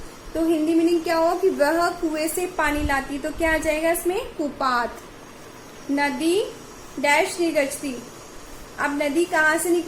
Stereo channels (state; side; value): identical; both; correlation 1.00